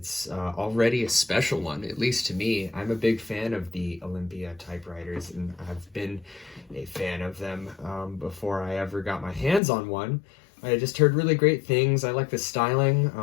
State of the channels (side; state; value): right; drops out; at 9.6 s